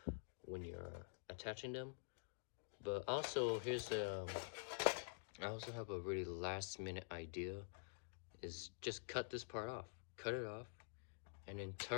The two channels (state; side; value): silent; right; digital silence